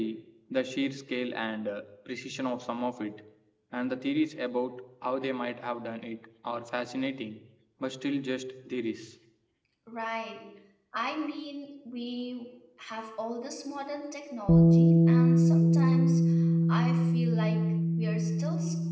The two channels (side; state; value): both; identical; correlation 1.00